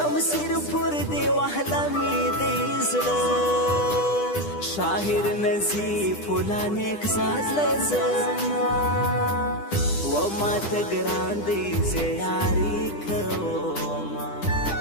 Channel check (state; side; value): late; right; 10 ms